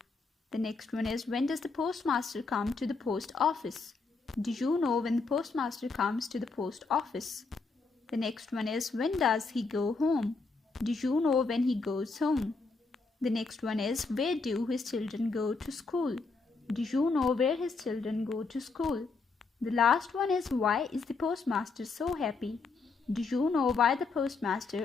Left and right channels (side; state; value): right; quieter; 4.2 dB